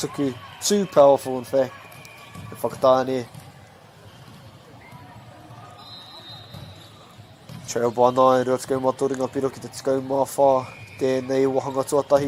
Too powerful in fact. And Fakatani. Trail by 9. Rua te kaumā toringa piro ki te kaumā whā. Tēnei wahanga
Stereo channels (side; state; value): both; identical; correlation 1.00